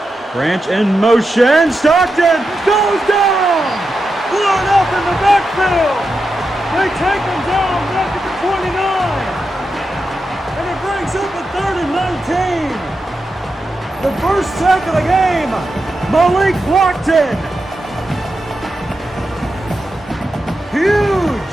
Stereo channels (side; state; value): both; normal; correlation 0.88